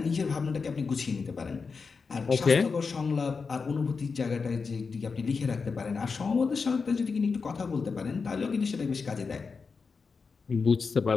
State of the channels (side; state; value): right; quieter; 5.0 dB